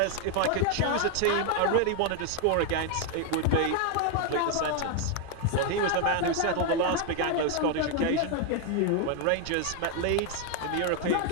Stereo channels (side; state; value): both; different; correlation 0.01